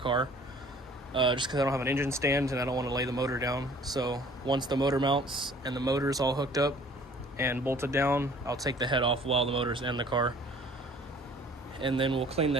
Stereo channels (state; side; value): normal; both; correlation 0.52